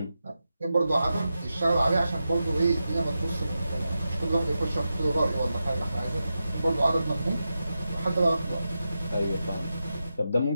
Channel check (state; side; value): inverted; both; correlation -0.90